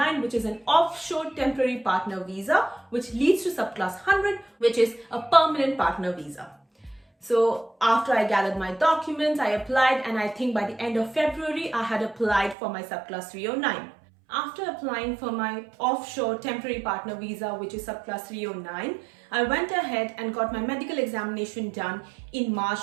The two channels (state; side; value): drops out; left; at 12.6 s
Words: which is an offshore temporary partner visa, which leads to subclass 100, which is a permanent partner visa. So after I gathered my documents, I applied, and I think by the end of February, I had applied for my subclass 309. After applying for my offshore temporary partner visa, which is subclass 309, I went ahead and got my medical examination done in